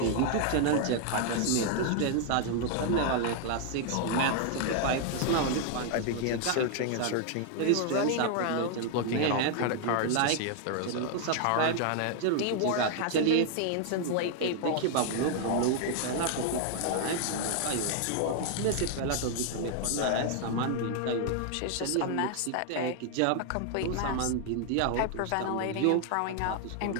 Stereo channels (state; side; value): different; both; correlation 0.00